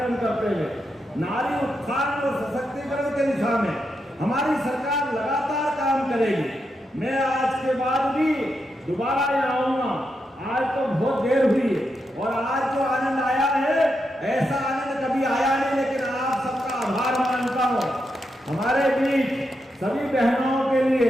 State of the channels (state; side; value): normal; both; correlation 0.84